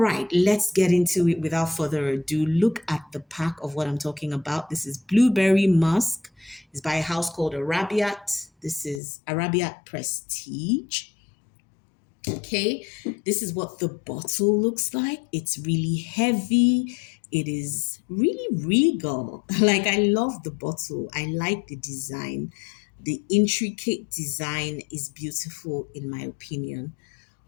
let's get into it without further ado. Look at the pack of what I'm talking about. This is Blueberry Musk. It's by a house called Arabiyat. This is Arabiyat Prestige. Okay, this is what the bottle looks like. It's really heavy. It is really regal. Like, I love the bottle. I like the design. The intricate design is beautiful, in my opinion.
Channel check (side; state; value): right; drops out; at 9.0 s